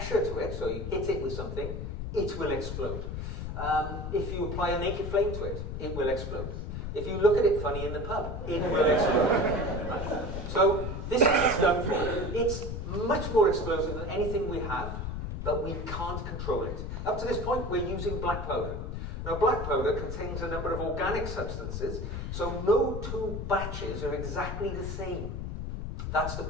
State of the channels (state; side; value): noise; left; rumble, 4 dB below the sound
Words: to it, so you hit it with something, it will explode. If you apply a naked flame to it, it will explode. If you look at it funny in the pub, it will explode. Right. So this is what it's done for. It's much more explosive than anything we have, but we can't control it. Up to this point, we're using black powder. Now, black powder contains a number of organic substances, so no two batches are exactly the same. That's the